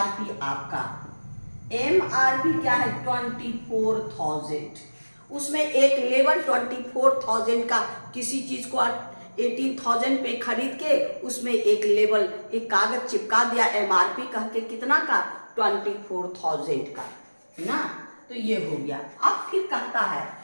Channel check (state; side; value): inverted; both; correlation -1.00